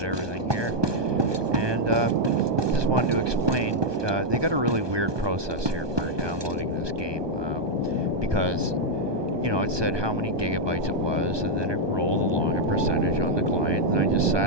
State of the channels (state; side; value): late; left; 1.2 ms